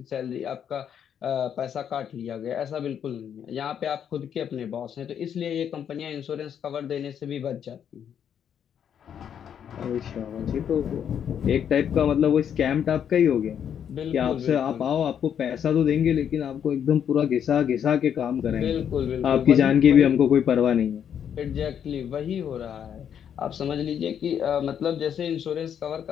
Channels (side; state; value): right; quieter; 8.6 dB